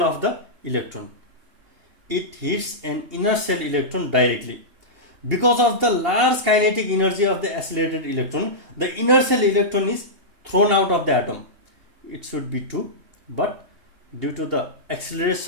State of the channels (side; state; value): left; late; 2.8 ms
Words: of the electron. It hits an inner shell electron directly. Because of the large kinetic energy of the accelerated electron, the inner shell electron is thrown out of the atom, it should be 2, but due to the